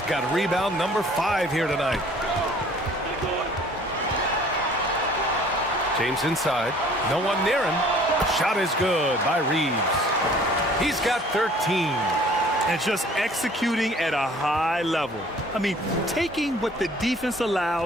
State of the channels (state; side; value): normal; both; correlation 0.53